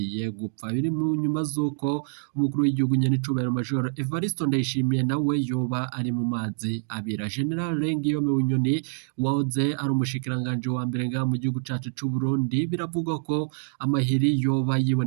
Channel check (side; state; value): left; silent; digital silence